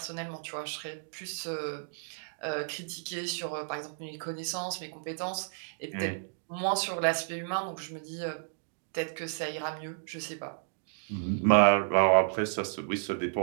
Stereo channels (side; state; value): left; silent; digital silence